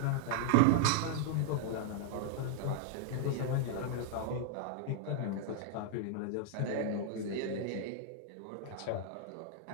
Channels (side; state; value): both; different; correlation -0.01